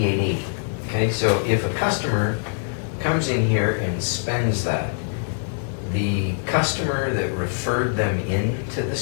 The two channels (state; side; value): silent; right; 63 dB below the other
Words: Okay, so if a customer comes in here and spends that, the customer that referred them into the